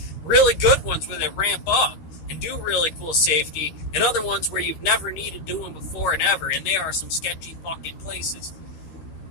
Really good ones where they ramp up and do really cool safety, and other ones where you've never needed doing before and ever, and they are some sketchy fucking places.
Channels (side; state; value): right; late; 13 ms